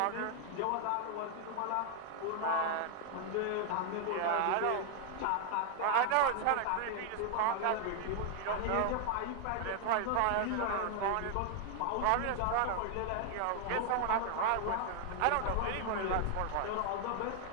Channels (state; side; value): different; both; correlation 0.00